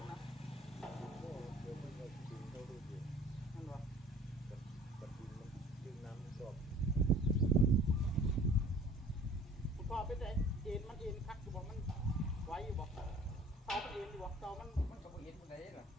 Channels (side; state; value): both; normal; correlation 0.49